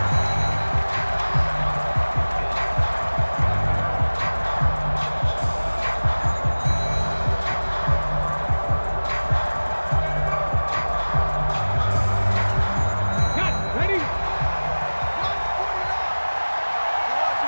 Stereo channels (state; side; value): inverted; both; correlation -1.00